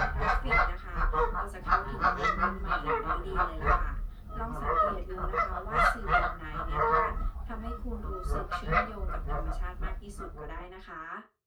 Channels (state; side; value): identical; both; correlation 1.00